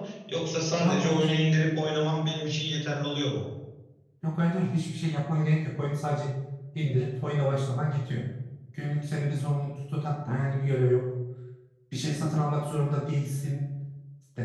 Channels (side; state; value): both; identical; correlation 1.00